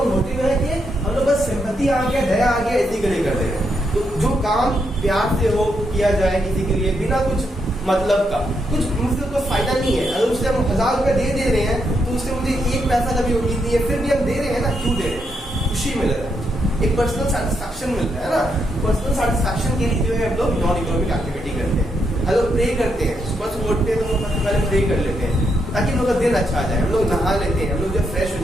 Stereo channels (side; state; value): both; normal; correlation 0.80